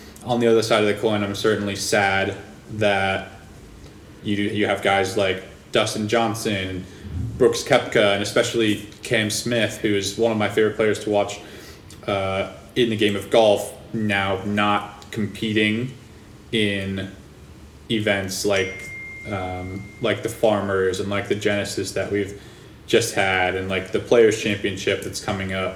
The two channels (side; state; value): both; identical; correlation 1.00